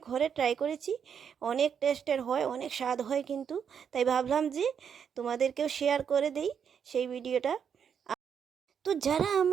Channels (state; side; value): quieter; left; 7.5 dB